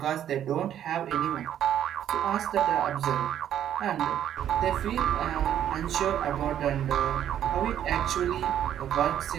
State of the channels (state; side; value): quieter; left; 10.5 dB